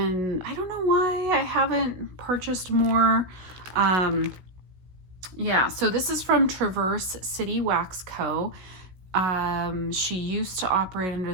I don't know why I haven't purchased more. Yeah, so this is from Traverse City Wax Co. She used to operate under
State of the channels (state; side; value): late; left; 16 ms